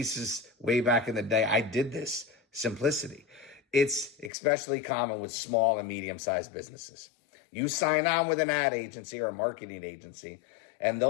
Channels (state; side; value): drops out; right; at 4.3 s